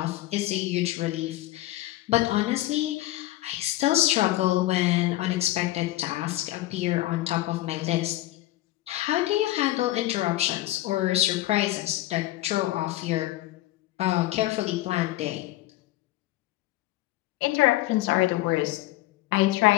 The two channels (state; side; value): quieter; right; 16.4 dB